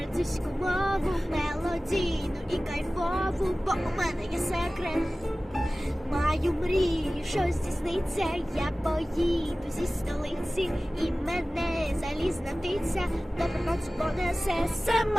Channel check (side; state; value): both; normal; correlation 0.97